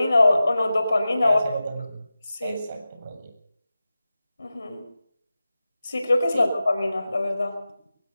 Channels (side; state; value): both; inverted; correlation -0.94